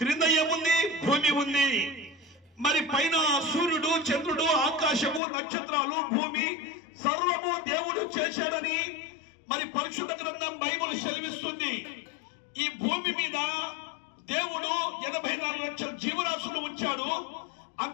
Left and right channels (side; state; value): right; drops out; at 5.2 s